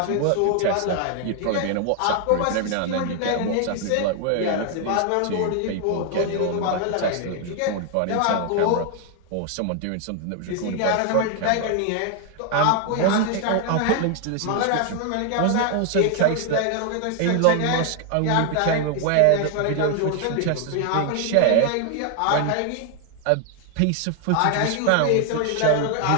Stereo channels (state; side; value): different; both; correlation 0.00